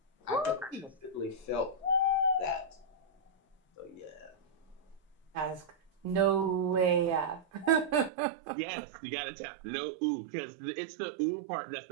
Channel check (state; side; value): drops out; left; at 8.1 s